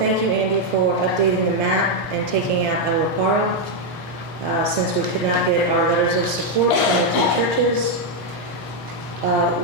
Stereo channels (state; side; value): late; right; 4.8 ms